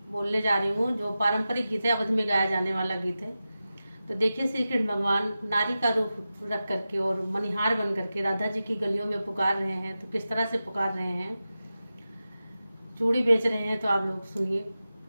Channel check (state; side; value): inverted; both; correlation -0.93